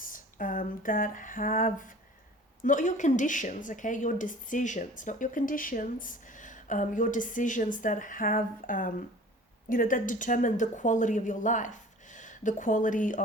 that have, not your conditions, okay, your decisions, not your conditions, your decisions that have, that determine the quality of your life, the quality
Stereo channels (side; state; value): both; normal; correlation 0.45